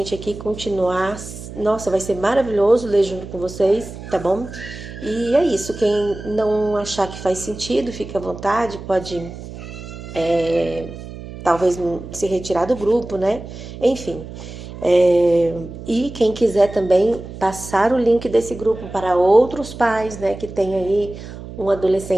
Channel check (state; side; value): noise; right; hum, 12 dB below the sound